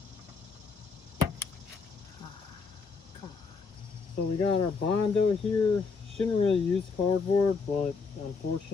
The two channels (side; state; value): right; quieter; 4.9 dB